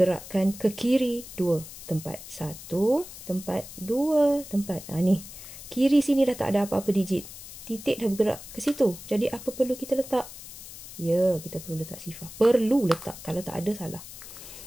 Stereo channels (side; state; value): left; noise; hiss, 14 dB below the sound